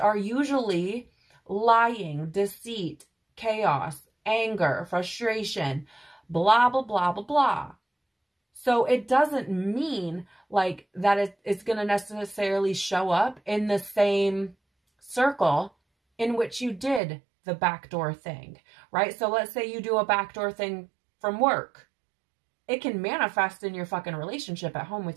usually lying, deceit, chaos, anger, frustration, blah, blah, blah, blah, blah. So it doesn't mean like that it's going to necessarily show up in the same circle in which you did the backdoor thing, right? So let's say you do a backdoor thing from work. It can manifest in your fucking relationship at home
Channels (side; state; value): left; drops out; at 17.0 s